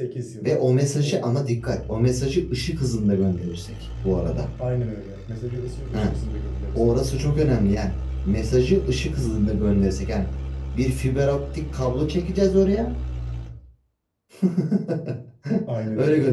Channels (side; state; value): both; identical; correlation 1.00